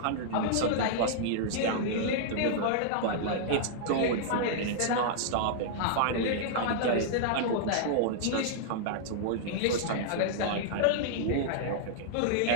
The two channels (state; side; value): different; both; correlation -0.01